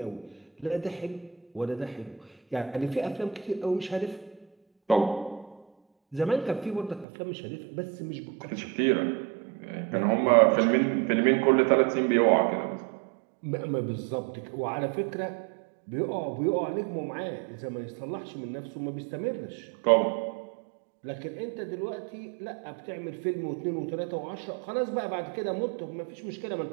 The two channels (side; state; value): left; drops out; at 7.1 s